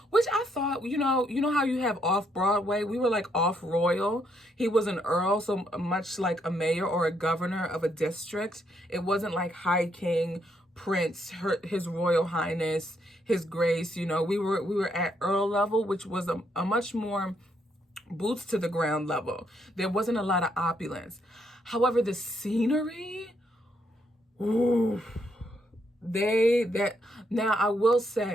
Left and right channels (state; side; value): normal; both; correlation 0.74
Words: which I thought, you know how you have off Broadway? We were like off royal. He was an earl, so much like a mayor or a governor of a district. It wasn't like high king, Prince, His Royal Highness, His Grace. You know, we were at Earl level, which was a much more boots to the ground level. There wasn't a lot of opulence. However, the scenery, ooh, now I will